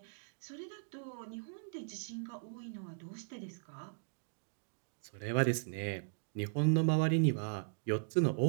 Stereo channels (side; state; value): left; silent; digital silence